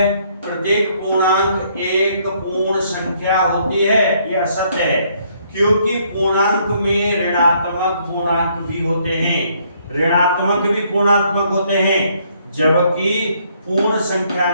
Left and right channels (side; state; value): both; inverted; correlation -0.68